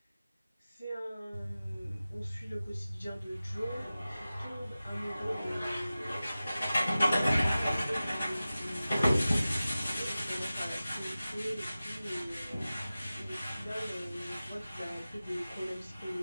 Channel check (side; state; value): both; inverted; correlation -0.96